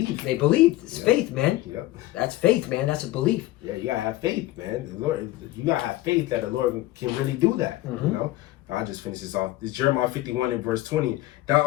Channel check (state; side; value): quieter; right; 16.6 dB